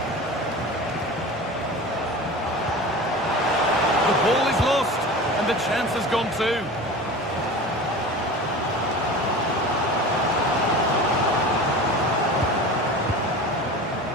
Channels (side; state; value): both; normal; correlation 0.34